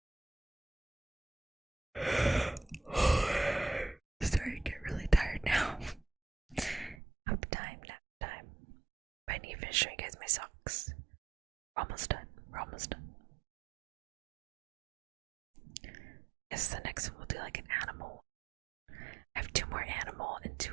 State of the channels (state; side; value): drops out; left; at 7.0 s